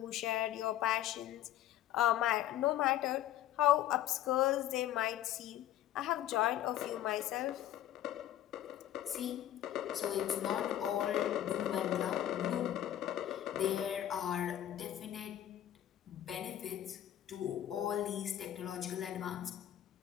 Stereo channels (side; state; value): right; quieter; 12.1 dB